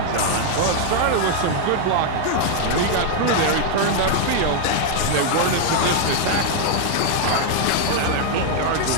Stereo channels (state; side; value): different; both; correlation 0.00